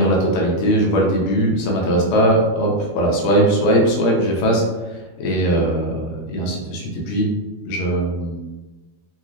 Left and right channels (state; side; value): late; right; 12 ms